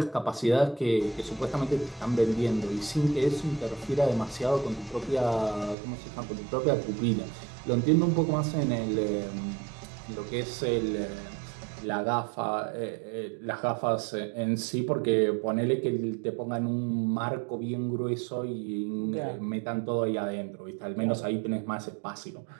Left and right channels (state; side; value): drops out; left; at 5.8 s